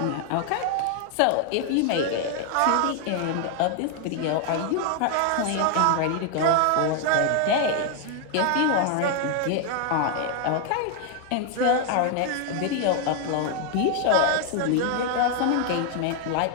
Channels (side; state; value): both; different; correlation 0.00